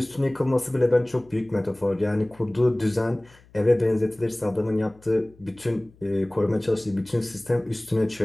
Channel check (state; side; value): noise; left; hum, 27 dB below the sound